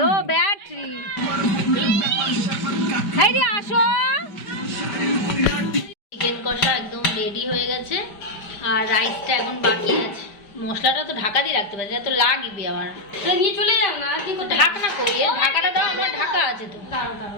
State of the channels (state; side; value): late; right; 5.1 ms